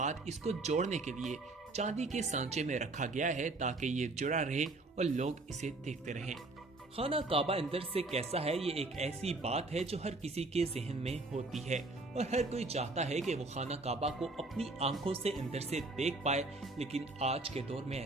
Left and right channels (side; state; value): left; quieter; 3.1 dB